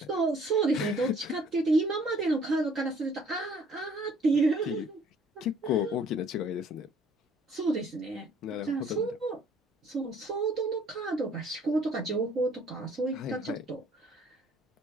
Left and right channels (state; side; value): normal; both; correlation 0.58